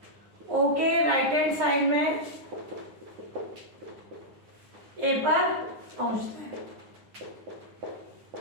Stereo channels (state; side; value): late; left; 9.7 ms